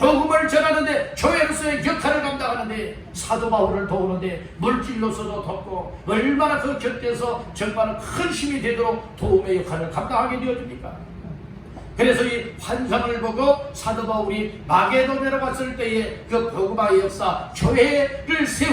전하는데 교회로서의 역할을 감당하는데 사도 바울을 도우는데 물질로서도 돕고 얼마나 그 곁에서 정말 큰 힘이 되도록 도움의 역할을 감당하게 되어집니까? 그래서 이 환상을 보고 사도 바울이 마게도냐로 갔을 때에 그 복음화의 역사 교회를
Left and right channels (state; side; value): identical; both; correlation 1.00